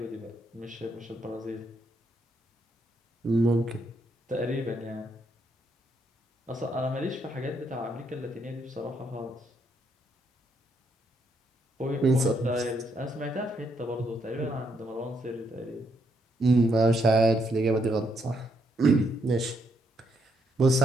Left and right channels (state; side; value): normal; both; correlation 0.75